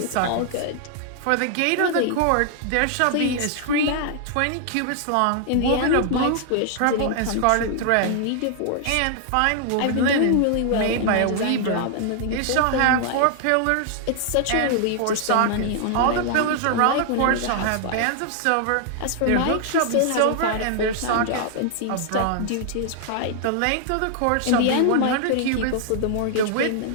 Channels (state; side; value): different; both; correlation 0.00